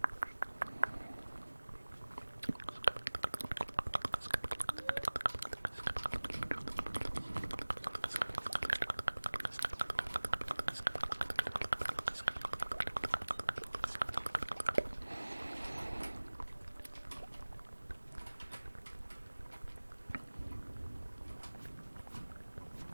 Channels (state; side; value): inverted; both; correlation -1.00